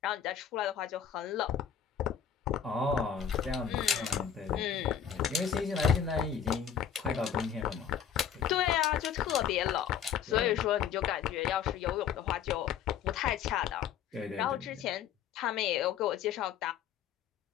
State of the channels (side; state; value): right; quieter; 8.3 dB